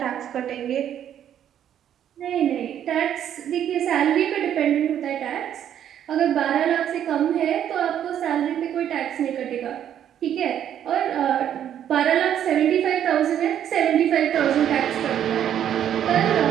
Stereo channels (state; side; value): quieter; left; 10.0 dB